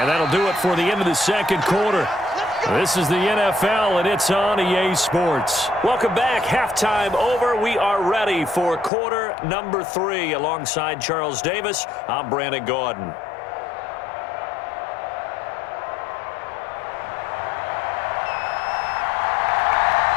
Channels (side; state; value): right; drops out; at 8.9 s